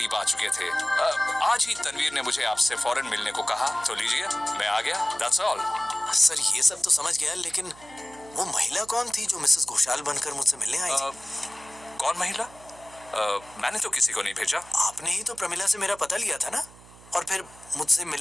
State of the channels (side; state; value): right; noise; hum, 22 dB below the sound